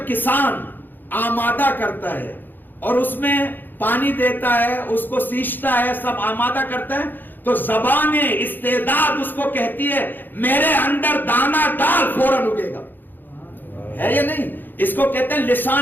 کسان آمادہ کرتا ہے اور اس میں پانی دیتا ہے، اس کو سینچتا ہے، سب آمادہ کرتا ہے، تو زبان استعداد اس کو کہتی ہے میرے اندر دانا ڈال فوراً اگے گا. ہے یا نہیں؟ اس کو کہتے ہیں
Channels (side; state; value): right; late; 0.090 ms